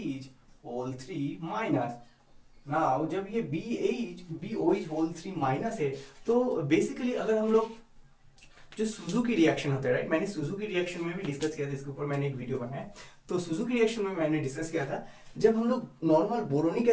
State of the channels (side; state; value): both; identical; correlation 1.00